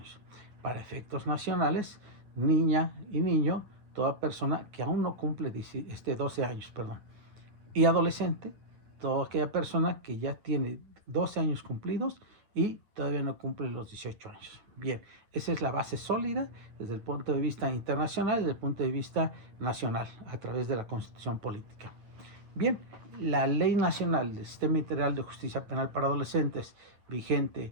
Para efectos nacionales, niña y niño, toda persona que aún no cumple 12 años, perdón. Y adolescente, toda aquella persona que ya tiene 12 años cumplidos y todavía no cumple los 18 años. Bien, esa es la base sólida desde el punto de vista internacional y desde el punto de vista nacional, a través de la Constitución Política. Bien, la Ley Nacional del Sistema Integral de Justicia Penal para Adolescentes,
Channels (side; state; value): left; late; 9.4 ms